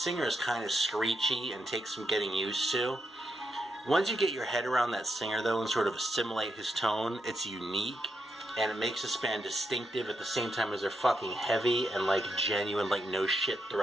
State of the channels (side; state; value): both; normal; correlation 0.83